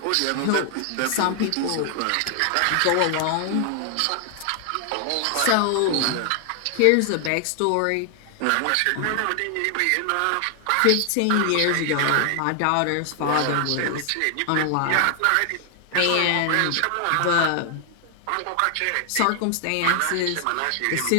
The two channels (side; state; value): both; different; correlation 0.00